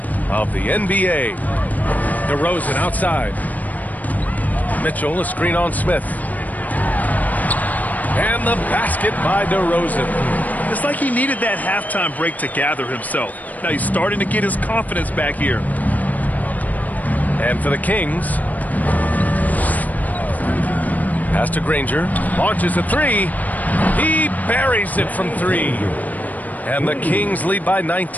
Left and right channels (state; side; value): late; right; 0.078 ms